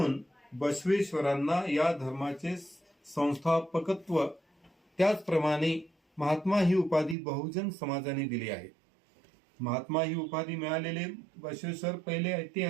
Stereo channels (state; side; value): drops out; left; at 7.2 s